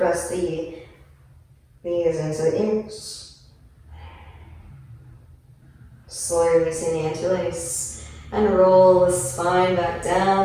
the knees into the ears. Slowly releasing the interlace. And roll the spine back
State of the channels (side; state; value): both; identical; correlation 1.00